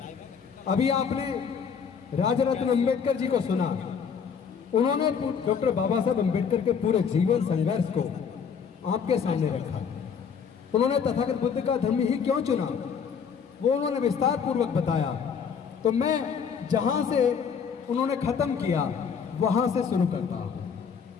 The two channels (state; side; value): quieter; right; 6.7 dB